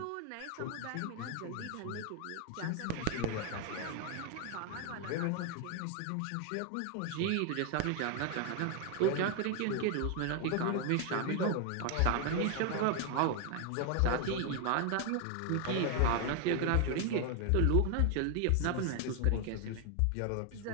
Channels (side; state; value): both; different; correlation 0.01